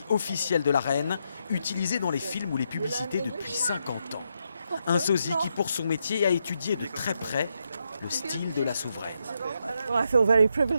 officiel de la reine, utilisé dans les films ou les publicités depuis 50 ans. Un sosie qui, pour son métier, a étudié de très près le style de la souveraine.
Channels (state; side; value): inverted; both; correlation -0.81